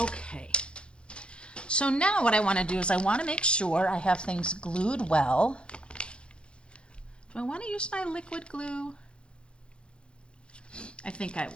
Okay. So now what I want to do is I want to make sure I have things glued well. Do I want to use my liquid glue? I think I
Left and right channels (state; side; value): late; right; 0.056 ms